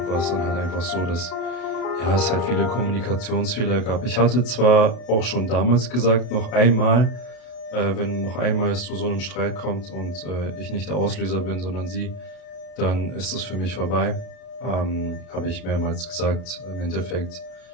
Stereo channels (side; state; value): right; late; 32 ms